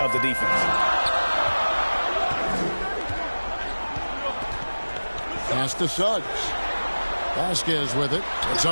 the defense. Pass to Suggs. Vasquez with it. It's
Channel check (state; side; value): inverted; both; correlation -1.00